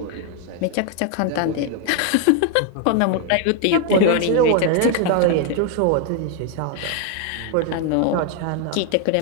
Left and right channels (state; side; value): different; both; correlation 0.01